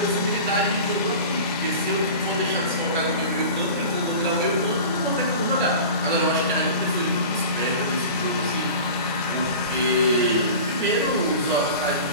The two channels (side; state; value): both; inverted; correlation -0.36